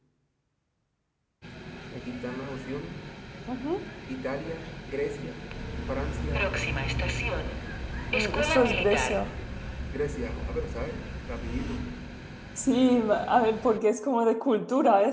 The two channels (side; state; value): both; identical; correlation 1.00